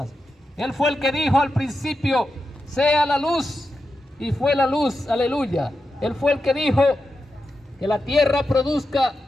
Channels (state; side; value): normal; both; correlation 0.89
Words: Él fue el que dijo al principio, sea la luz, y fue la luz, aleluya. Él fue el que dijo que la tierra produzca